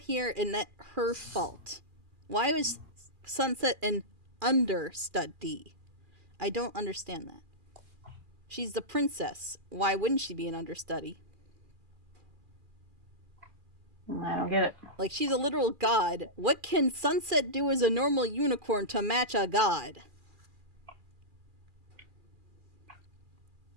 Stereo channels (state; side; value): late; left; 2.4 ms